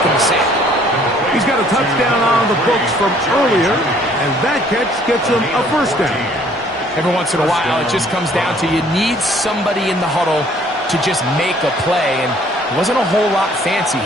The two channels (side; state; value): both; normal; correlation 0.59